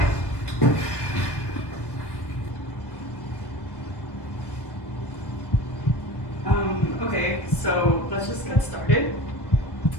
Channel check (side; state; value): right; late; 1.1 ms